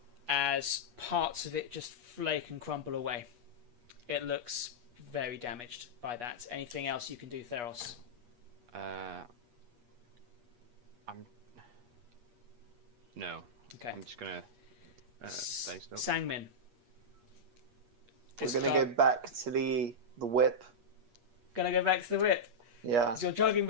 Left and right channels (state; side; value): late; left; 8.4 ms